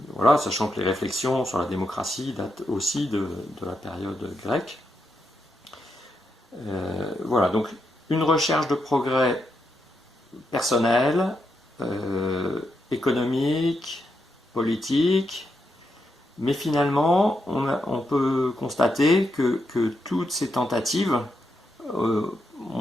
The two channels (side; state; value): both; normal; correlation 0.83